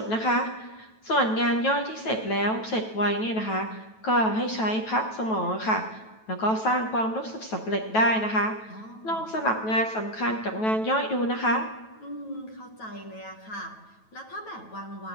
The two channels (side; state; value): right; late; 9.2 ms